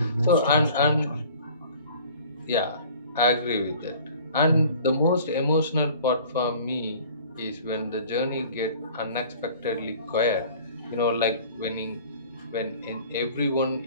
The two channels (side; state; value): both; inverted; correlation -0.48